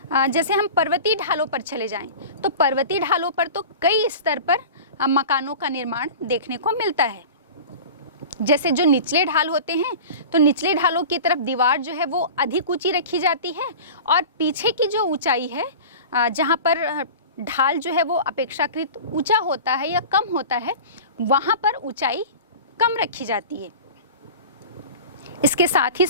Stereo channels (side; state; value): both; inverted; correlation -0.35